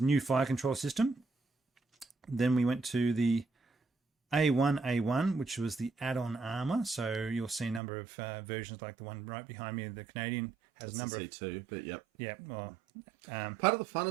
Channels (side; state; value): left; drops out; at 7.8 s